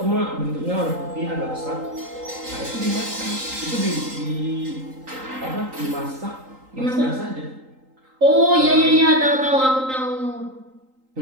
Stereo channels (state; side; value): late; left; 3.8 ms